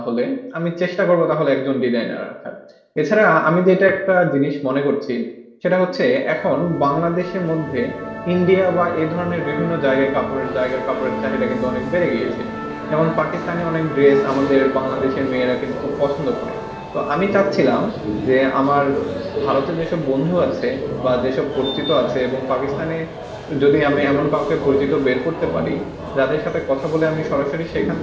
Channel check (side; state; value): both; identical; correlation 1.00